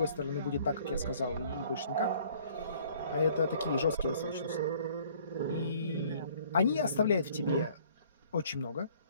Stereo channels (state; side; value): inverted; both; correlation -0.57